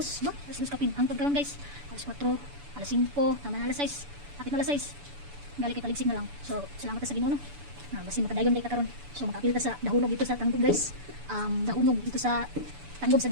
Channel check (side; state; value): left; late; 7.0 ms